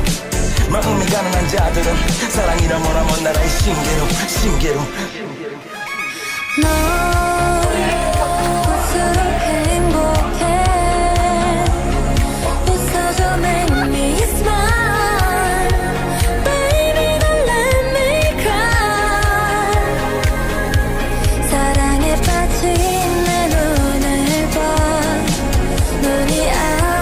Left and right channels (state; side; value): identical; both; correlation 1.00